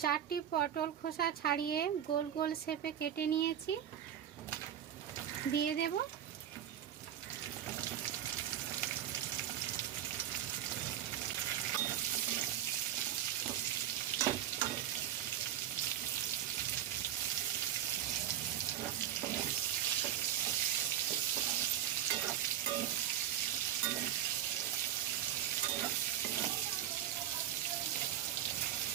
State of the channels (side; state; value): left; quieter; 10.8 dB